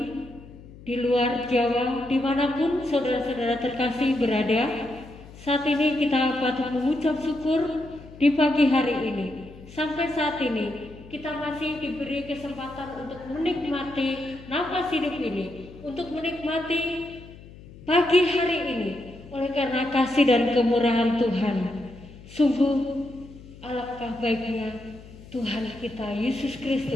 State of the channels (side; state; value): left; noise; hum, 19 dB below the sound